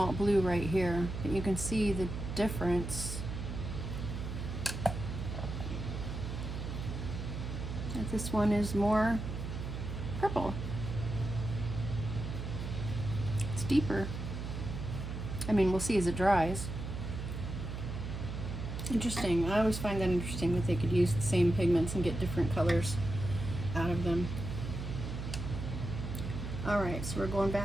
blue right here. But you can see the difference. That this one is more purple. It's deeper. I mean, we'll see as it dries. Interesting. I always find that interesting that they could use the same pigments and get different colors out of them. All right, so we're going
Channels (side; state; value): right; noise; hum, 5 dB below the sound